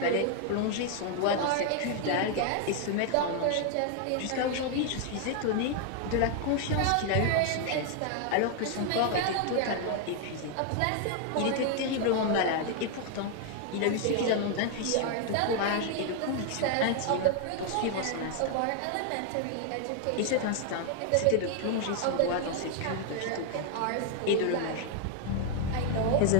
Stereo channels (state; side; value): different; both; correlation 0.00